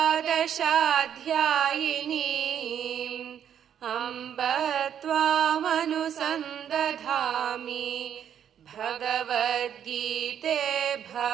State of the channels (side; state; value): left; quieter; 9.2 dB